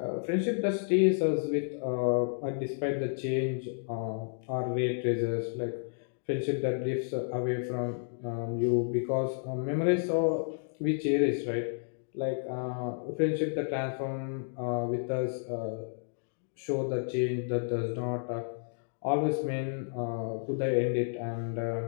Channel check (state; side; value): silent; right; digital silence